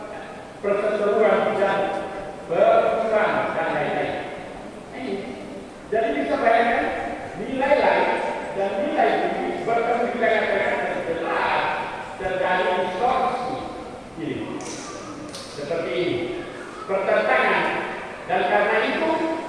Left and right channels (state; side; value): identical; both; correlation 1.00